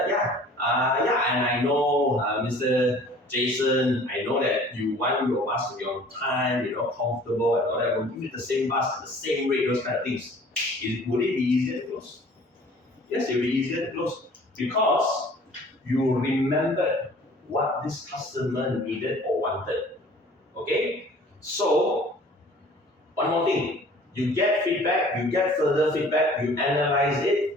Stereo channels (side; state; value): both; normal; correlation 0.50